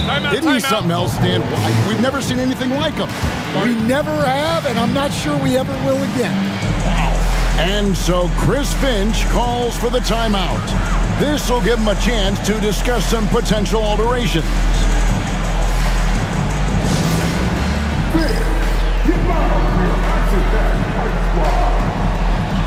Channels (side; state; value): both; identical; correlation 1.00